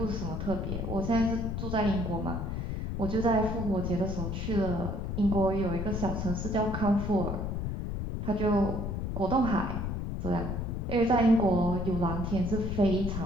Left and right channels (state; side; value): noise; left; rumble, 3 dB below the sound